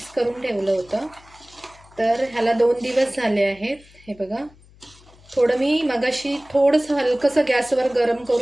करून ठेवलं होतं. तर ह्याला 2 दिवस झाले आहेत. हे बघा, थोडं मी मगाशी थोडंसं हलकंसं गॅसवर गरम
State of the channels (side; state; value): left; noise; hum, 26 dB below the sound